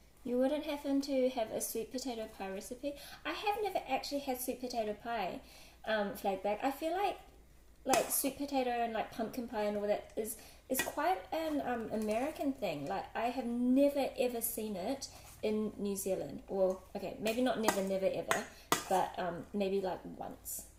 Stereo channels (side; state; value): both; identical; correlation 1.00